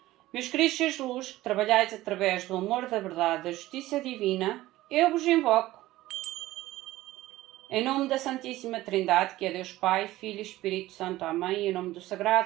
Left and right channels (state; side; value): quieter; left; 16.6 dB